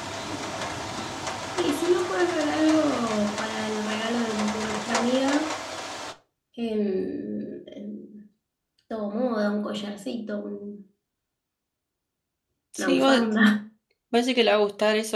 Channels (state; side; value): identical; both; correlation 1.00